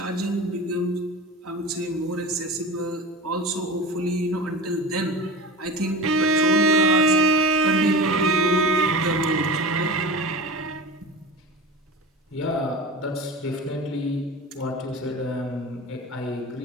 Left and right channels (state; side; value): normal; both; correlation 0.31